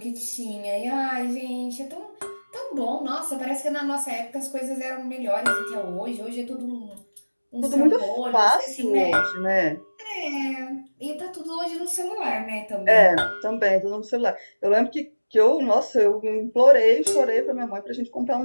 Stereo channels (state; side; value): inverted; both; correlation -1.00